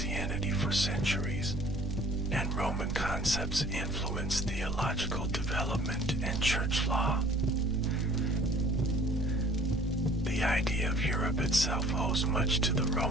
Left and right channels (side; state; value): both; normal; correlation 0.52